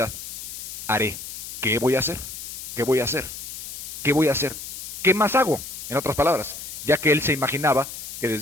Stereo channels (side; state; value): left; noise; hiss, 9 dB below the sound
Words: haré. ¿Qué voy a hacer? ¿Qué voy a hacer? ¿Qué voy a hacer? ¿Qué más hago? En otras palabras, ya que él se imaginaba que